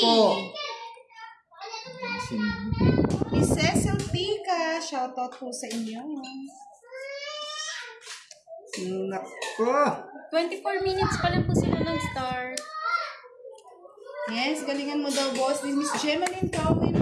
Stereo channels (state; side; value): identical; both; correlation 1.00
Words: Miss Cecil Tika, shoutout po sa inyo. Nako. 24 minutes pa lang po sila nag-start. Yes, galingan mo daw, boss. Din Miss Gemaline Calvin